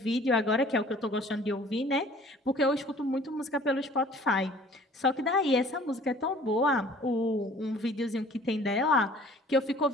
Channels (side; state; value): both; normal; correlation 0.51